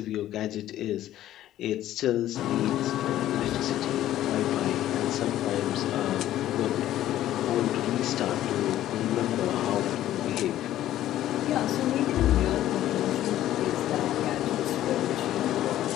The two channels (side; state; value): right; quieter; 13.1 dB